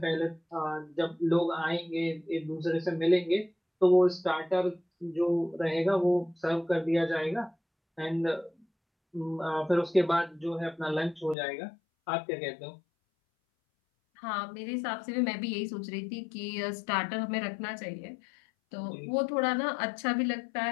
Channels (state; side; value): drops out; right; at 11.4 s